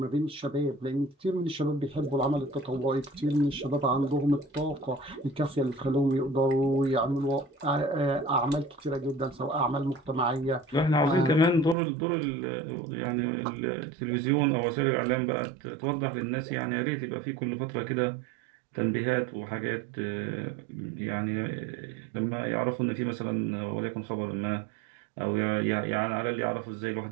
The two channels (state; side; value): drops out; left; at 11.8 s